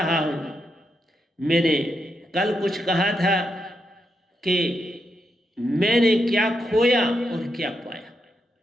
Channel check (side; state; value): both; normal; correlation 0.83